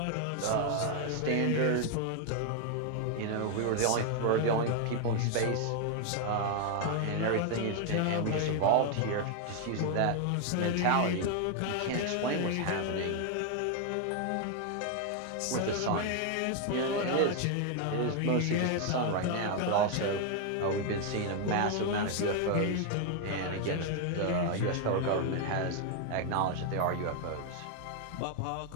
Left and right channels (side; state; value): both; different; correlation 0.00